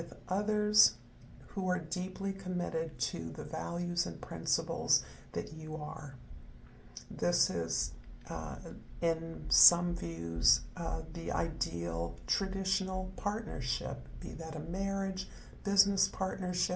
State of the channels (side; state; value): both; identical; correlation 1.00